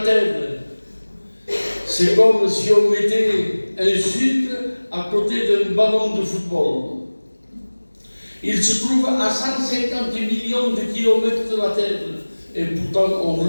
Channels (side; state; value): both; inverted; correlation -1.00